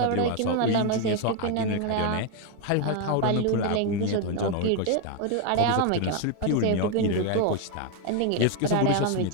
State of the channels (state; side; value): different; both; correlation 0.01